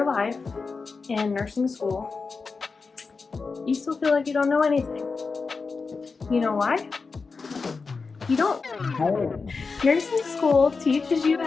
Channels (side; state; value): right; quieter; 4.5 dB